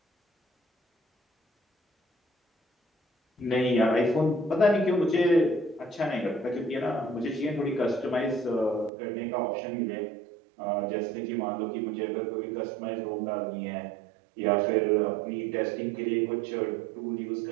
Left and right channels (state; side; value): drops out; left; at 8.9 s